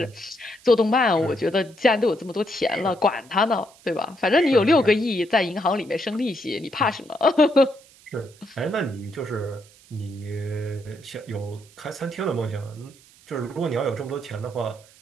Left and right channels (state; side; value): noise; right; hiss, 26 dB below the sound